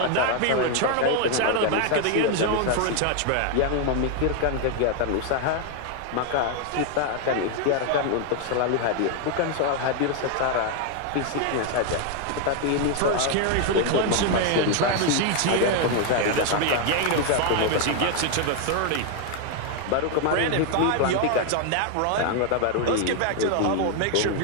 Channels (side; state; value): both; different; correlation 0.01